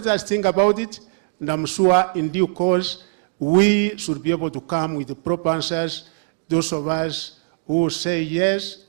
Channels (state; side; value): silent; left; digital silence